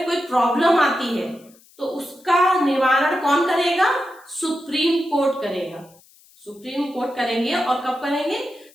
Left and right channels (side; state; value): left; noise; hiss, 28 dB below the sound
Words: कोई प्रॉब्लम आती है तो उसका निवारण कौन करेगा? सुप्रीम कोर्ट करेगा। सुप्रीम कोर्ट करेंगे और कब करेंगे?